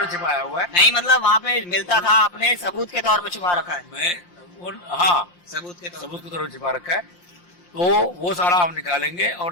छिपाया हुआ है। नहीं मतलब वहाँ पे मिलता था, आपने सबूत के तौर पर छुपा रखा है? हाँ, सबूत के तौर पर छिपा रखा है। तो वो सारा हम निकालेंगे,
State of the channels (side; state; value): right; late; 5.7 ms